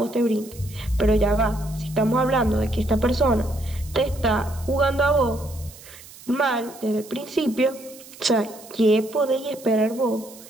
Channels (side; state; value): right; noise; hiss, 19 dB below the sound